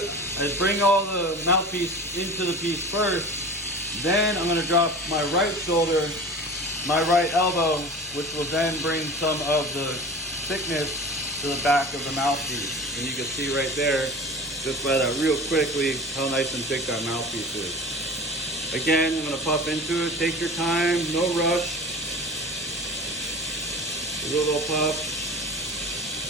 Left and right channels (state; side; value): normal; both; correlation 0.36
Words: bring all the mouthpiece into the piece first. Then I'm going to drop my right shoulder, my right elbow, which will then bring some of the thickness to the back of the mouthpiece. And you can see right there, just by that real quickly, how nice and thick that mouthpiece is. Again, I'm going to puff into it. Take your time, no rush. A little puff.